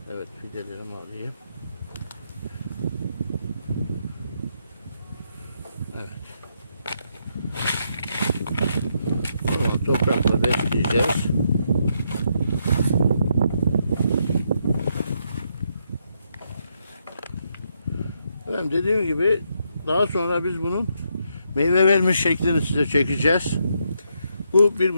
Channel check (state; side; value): inverted; both; correlation -0.78